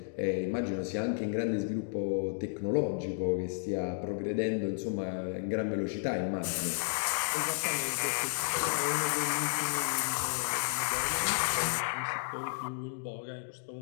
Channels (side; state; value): right; silent; digital silence